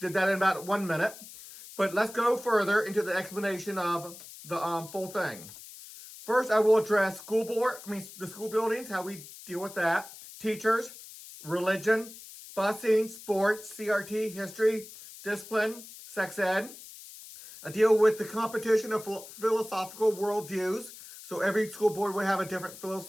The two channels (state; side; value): noise; left; hiss, 16 dB below the sound